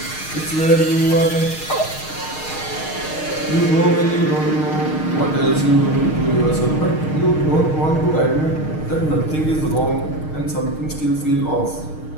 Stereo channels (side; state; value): right; late; 6.5 ms